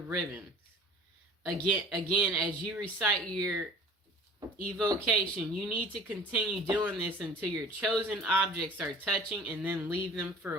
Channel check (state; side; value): normal; both; correlation 0.45